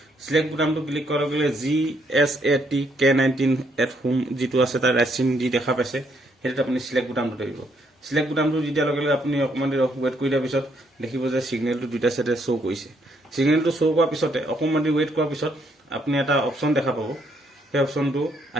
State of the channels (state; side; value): normal; both; correlation 0.72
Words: সিলেক্ট বুটামটো ক্লিক কৰাৰ লগে লগে GSAT-K19 যিটো আছে তাৰ ৰাইট চিন দি দেখা পাইছে, সেইটোত আপুনি সিলেক্ট বুটামটো দিব। সিলেক্ট বুটামটো দি দিয়াৰ লগে লগে আপুনি অকণমান দেৰি ৱেইট কৰি দিয়াৰ পিছত দেখিব যে ছিগনেলটো দুটা চাইডে শ্ব' কৰিছে। ছিগনেলটো শ্ব' কৰাৰ পিছতে অকণমান দেৰি ৱেইট কৰাৰ পিছত আপুনি এটা অপশ্যন দেখা পাব। সেই অপশ্যনটো